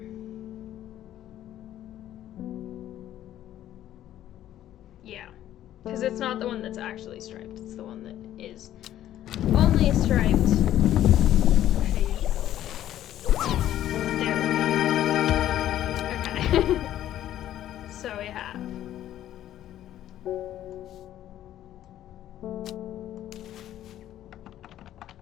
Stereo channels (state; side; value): quieter; right; 12.3 dB